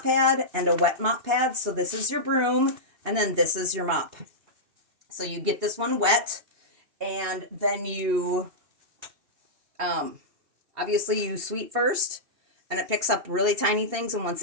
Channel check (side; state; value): left; late; 2.8 ms